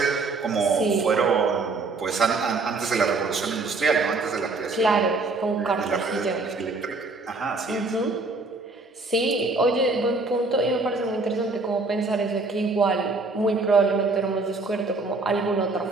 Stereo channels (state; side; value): quieter; left; 3.6 dB